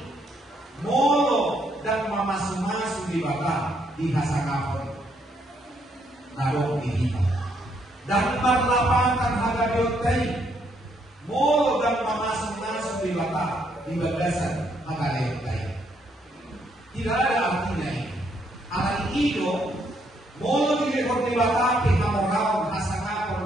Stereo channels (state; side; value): normal; both; correlation 0.73